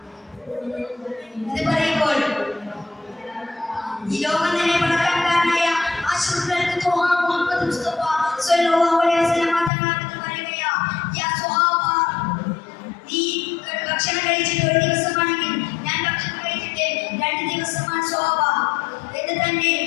ഇത് പറയുമ്പോൾ ഈ ലോകം തന്നെ പണക്കാരനായ ആശുപത്രിക്ക് മുഹമ്മദ് മുസ്തഫ സ്വല്ലല്ലാഹു അലൈഹി വസല്ലം തങ്ങളെ പറയുകയാ, യാ സ്വഹാബ, നീ ഭക്ഷണം കഴിച്ചിട്ട് ഒരു ദിവസമാണെങ്കിൽ ഞാൻ ഭക്ഷണം കഴിച്ചിട്ട് 2 ദിവസമാണ് സ്വഹാബ എന്ന് തന്നെ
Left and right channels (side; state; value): right; drops out; at 9.7 s